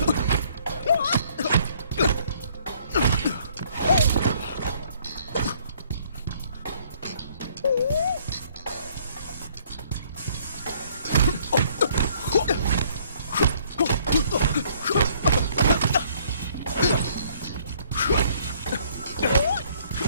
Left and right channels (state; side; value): inverted; both; correlation -0.62